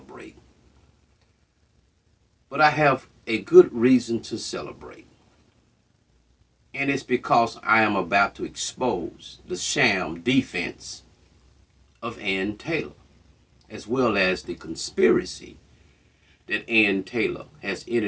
But I have a good reason to celebrate. And it's because I am about to expose the sham defense of Ann Taylor, as well as the conspiracy that Ann Taylor has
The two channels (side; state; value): both; identical; correlation 1.00